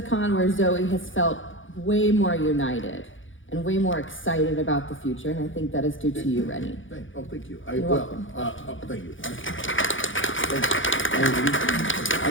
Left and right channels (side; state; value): right; late; 0.57 ms